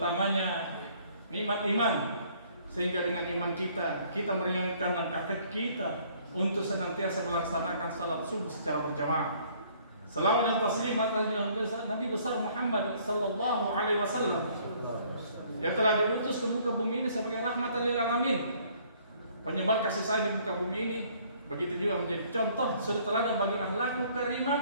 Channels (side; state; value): both; inverted; correlation -0.61